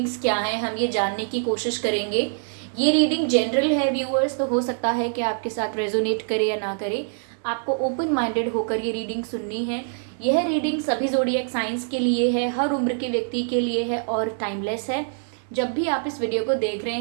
क्या हैं, हम ये जानने की कोशिश करेंगे। ये रीडिंग जनरल है व्यूअर्स, तो हो सकता है कि आपके साथ रेजोनेट करे या ना करे। आपको ओपन माइंडेड होकर ये रीडिंग सुननी है। यह रीडिंग सभी ज़ोडिएक साइंस के लिए है, हर उम्र के व्यक्ति के लिए है और टाइमलेस है। जब भी आप इस वीडियो को देख रहे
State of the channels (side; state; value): left; silent; digital silence